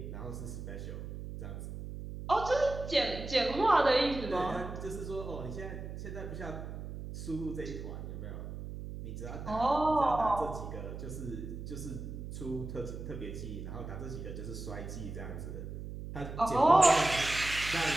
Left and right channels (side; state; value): right; noise; hum, 8 dB below the sound